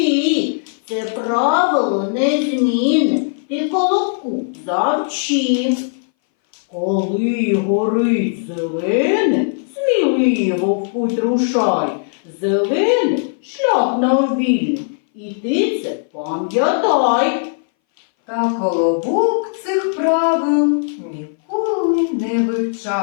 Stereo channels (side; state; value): right; silent; 62 dB below the other